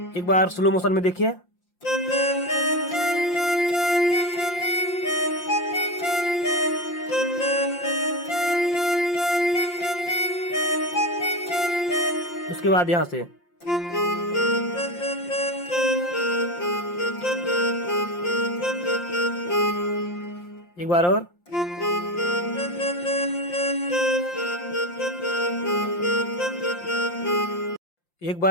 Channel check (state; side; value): late; right; 5.7 ms